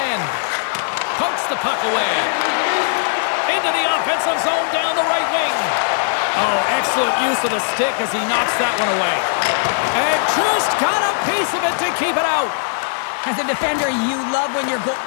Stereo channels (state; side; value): silent; right; digital silence